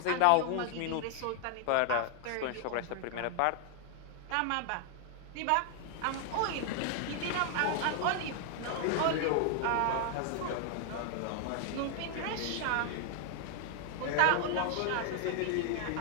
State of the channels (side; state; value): both; different; correlation 0.00